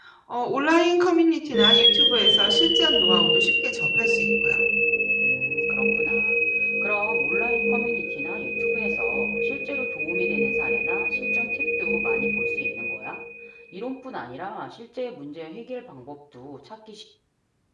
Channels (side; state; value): both; identical; correlation 1.00